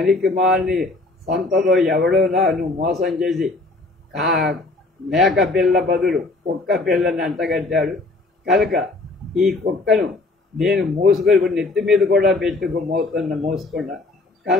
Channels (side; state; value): right; quieter; 3.2 dB